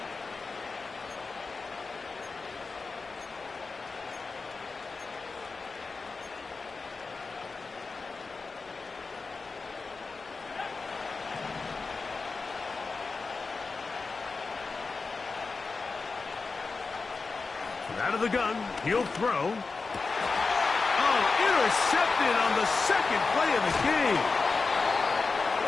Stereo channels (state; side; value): quieter; right; 4.2 dB